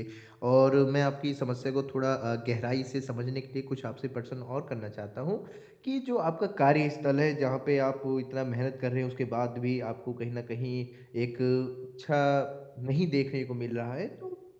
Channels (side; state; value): both; identical; correlation 1.00